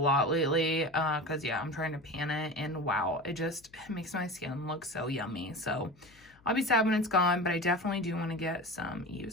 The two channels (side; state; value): left; noise; hum, 28 dB below the sound